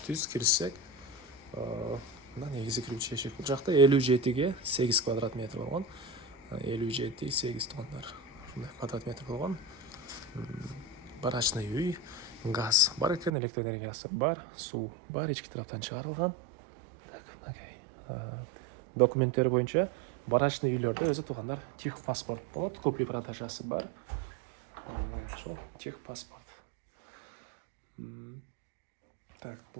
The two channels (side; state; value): left; drops out; at 13.3 s